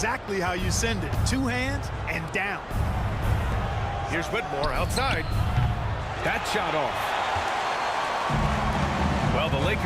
how you send it. 2 hands and down. Here's Whitmore outside. That shot off. Well, the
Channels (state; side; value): identical; both; correlation 1.00